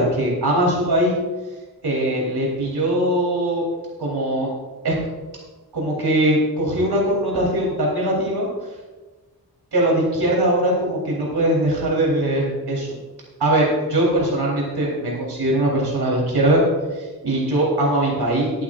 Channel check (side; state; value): both; normal; correlation 0.13